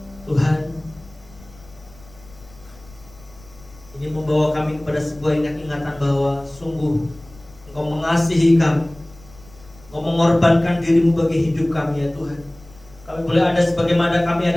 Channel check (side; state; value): left; noise; rumble, 24 dB below the sound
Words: Tuhan, ini membawa kami kepada sebuah ingatan bahwa sungguh Engkau mengasihi kami, Engkau mengorbankan dirimu bagi hidup kami ya Tuhan. Kami boleh ada sebagaimana kami